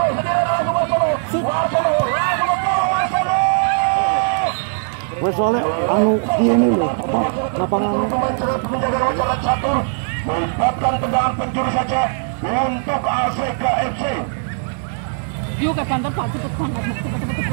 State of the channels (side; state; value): left; silent; 66 dB below the other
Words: sendirian langsung Warsono langsung ke Warsono. Wes soalnya anu ini loh apa lapangannya. Menjaga jalan catur. Melibatkan tendangan penjuru saja untuk ACKFC. Yuk ke pantai Pak cepet banget,